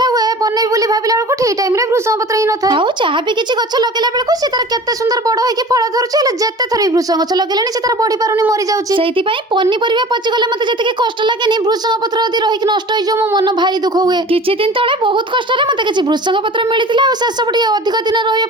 हुए बनेबी बोली भाबिला बेलको ठीक टाइम रे भृसंग पत्र ही न थाए आउ चाहा भी किछि गछ लगेला बेलको से तार केते सुंदर बड़ होई कि फळ धरुछि हेले जेते थरी भृसंग गछ लगेलेनी से तार बढी पारुनी मरि जाउछि सेति पई पन्नी परिबा पचि गले मते जति के कष्ट लागेनी भृसंग पत्र यदि रहि कि नष्ट होई जो मो मन भारी दुख हुए किछि दिन तळे बहुत कष्ट रे मते किछि भृसंग पत्र मिलितिला आ से सब टिके अधिक दिन रहिया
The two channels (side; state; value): both; normal; correlation 0.40